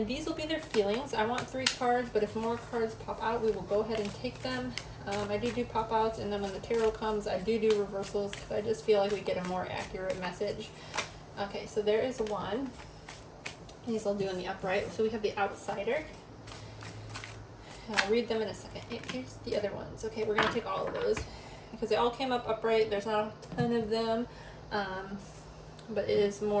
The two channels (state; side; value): identical; both; correlation 1.00